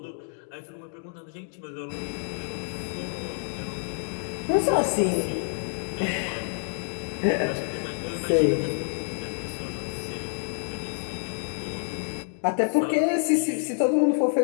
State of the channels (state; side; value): silent; right; digital silence